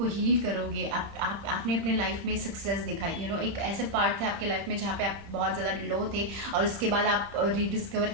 हील करोगे, आपने अपने लाइफ में सक्सेस दिखाई, एक ऐसे पार्ट था आपके लाइफ में जहाँ पे आप बहुत ज़्यादा लो थे, और उसके बाद आप रीडिस्कवर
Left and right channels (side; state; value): left; late; 30 ms